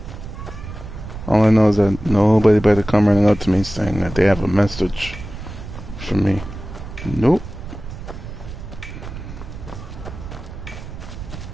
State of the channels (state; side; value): noise; right; rumble, 11 dB below the sound